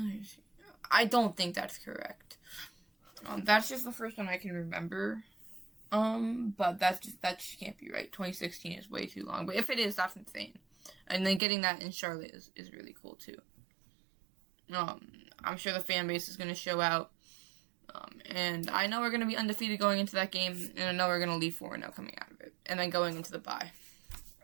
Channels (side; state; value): left; drops out; at 11.4 s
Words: I don't think that's correct. That's just the first one I can remember. But that just can't be right. 2016 is way too long. But if it is, that's insane. And then getting that in Charlotte is really cool too. I'm sure the fan base is going to show out. And I know we're going to be undefeated going into that game, and I know we're going to leave 4-0 coming out of it, and then going into the bye.